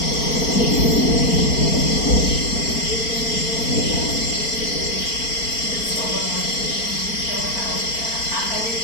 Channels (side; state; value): right; late; 4.4 ms